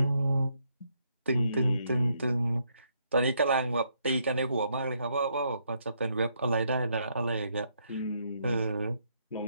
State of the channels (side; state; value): both; inverted; correlation -0.74